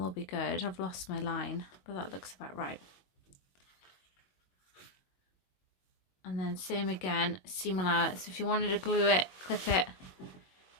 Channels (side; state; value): right; late; 22 ms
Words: all be good. I've lost my line, but that looks about right. And then same again, seam allowance. So if you wanted to glue it, clip it,